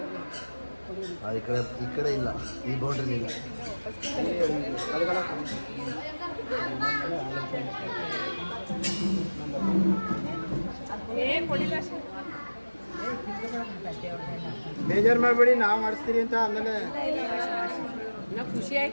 ಈ ಕಡೆ ಇಲ್ಲ, ಈ ಬೌಂಡ್ರಿ ಇಲ್ಲ. ಬೇಜಾರು ಮಾಡಬೇಡಿ, ನಾವು ಮಾಡಿಸ್ತೀರಿ ಅಂತ. ಆಮೇಲೆ ಖುಷಿ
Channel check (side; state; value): both; inverted; correlation -1.00